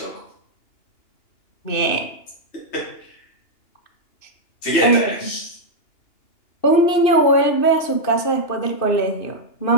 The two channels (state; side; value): late; right; 2.6 ms